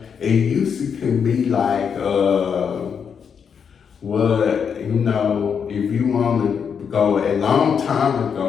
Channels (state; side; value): quieter; right; 6.9 dB